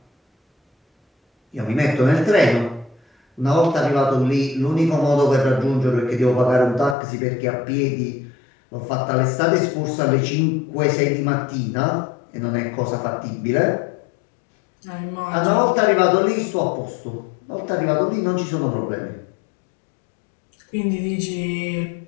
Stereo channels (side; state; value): right; drops out; at 7.0 s